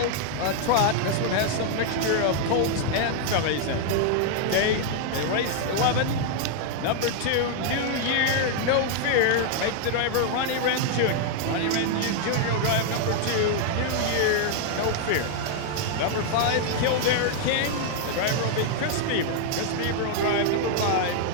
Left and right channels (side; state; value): both; different; correlation 0.00